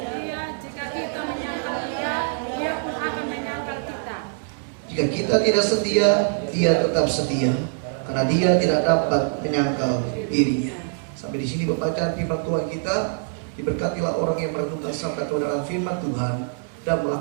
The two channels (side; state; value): left; silent; 61 dB below the other